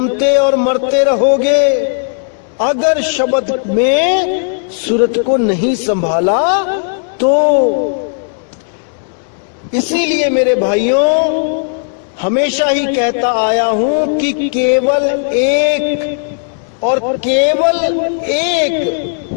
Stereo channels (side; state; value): right; silent; digital silence